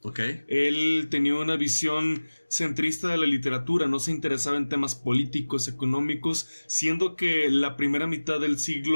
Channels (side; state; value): both; inverted; correlation -1.00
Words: Ok. Él tenía una visión centrista de la literatura, no se interesaba en temas políticos, económicos, siendo que la primera mitad del